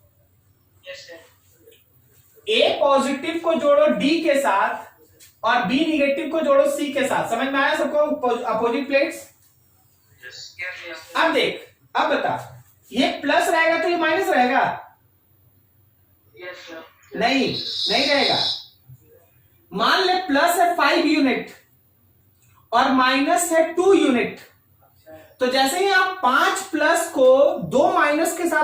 Yes sir. ए पॉजिटिव को जोड़ो डी के साथ और बी निगेटिव को जोड़ो सी के साथ। समझ में आया सबको? Opposite plates. Yes. अब देख, अब बता, ये प्लस रहेगा तो ये माइनस रहेगा? Yes, sir. नहीं, नहीं रहेगा। मान ले प्लस है 5 यूनिट और माइनस है 2 यूनिट, तो जैसे ही आप 5 प्लस को 2 माइनस के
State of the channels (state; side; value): identical; both; correlation 1.00